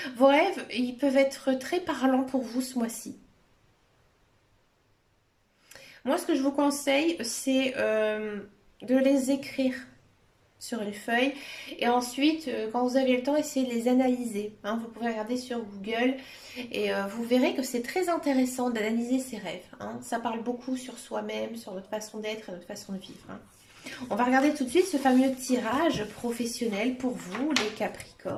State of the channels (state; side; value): identical; both; correlation 1.00